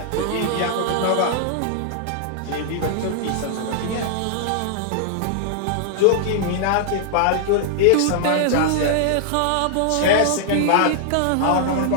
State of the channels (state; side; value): different; both; correlation -0.01